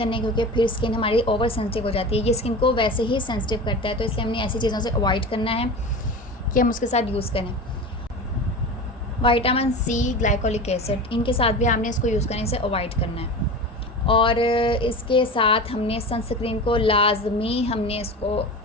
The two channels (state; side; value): normal; both; correlation 0.30